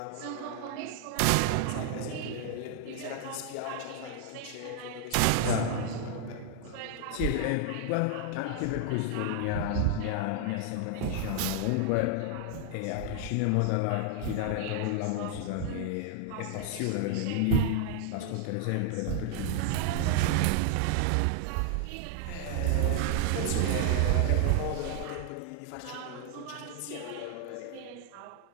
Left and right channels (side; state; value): both; different; correlation 0.00